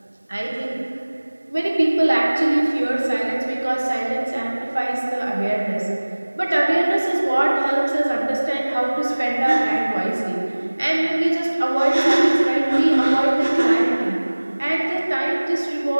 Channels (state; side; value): inverted; both; correlation -1.00